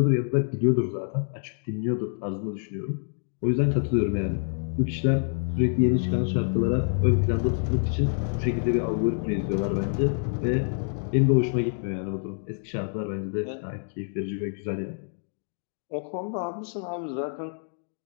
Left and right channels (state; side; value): silent; right; digital silence